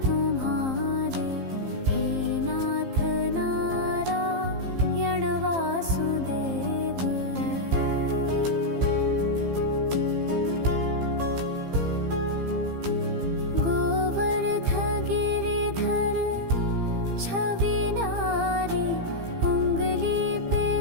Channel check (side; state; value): left; late; 15 ms